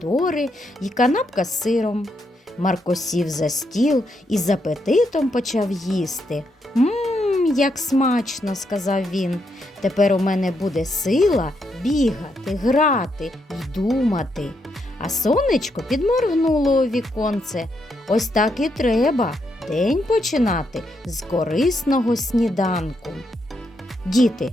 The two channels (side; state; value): both; normal; correlation 0.79